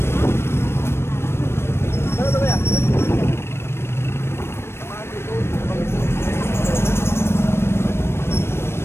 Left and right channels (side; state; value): right; late; 0.12 ms